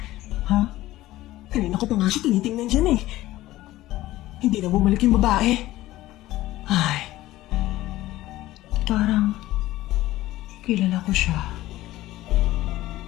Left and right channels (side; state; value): right; quieter; 16.2 dB